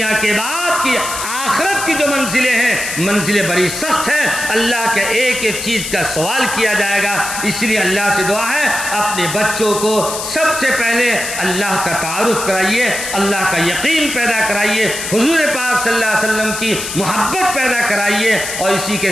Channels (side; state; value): left; noise; hiss, 6 dB below the sound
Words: کے بعد کی آخرت کی جو منزلیں ہیں، منزلیں بڑی سخت ہیں، اللہ کے ایک ایک چیز کا سوال کیا جائے گا۔ اس لیے اللہ سے دعا ہے اپنے بچوں کو سب سے پہلے اللہ کا تعارف کرائیے، اللہ کا یقین پیدا کرائیے، حضور پاک صلی اللہ علیہ وسلم کی محبت پیدا کرائیے، اور اسی کے